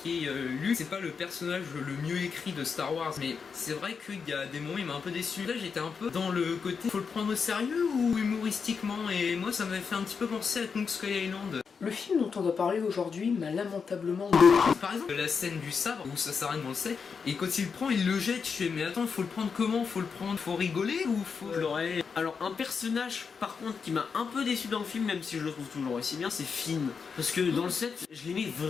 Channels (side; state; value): right; quieter; 5.8 dB